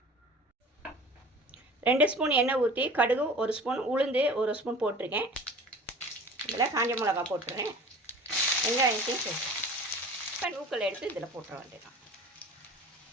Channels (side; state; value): both; normal; correlation 0.42